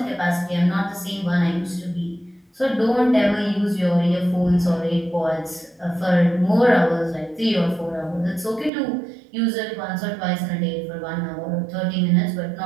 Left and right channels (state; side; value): drops out; left; at 8.7 s